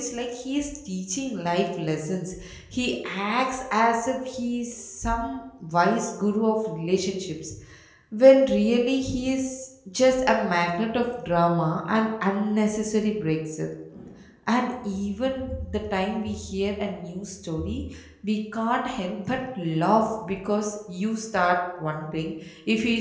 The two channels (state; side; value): identical; both; correlation 1.00